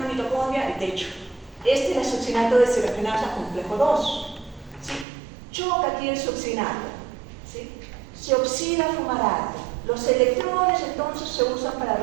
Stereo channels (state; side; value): drops out; left; at 5.1 s